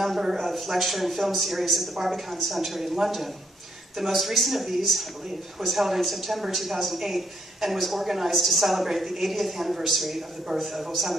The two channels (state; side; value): normal; both; correlation 0.72